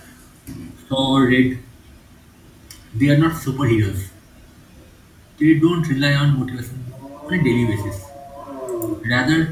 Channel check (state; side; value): identical; both; correlation 1.00